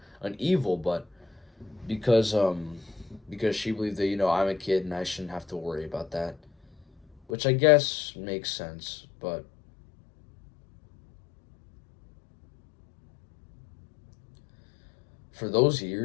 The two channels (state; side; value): drops out; right; at 7.3 s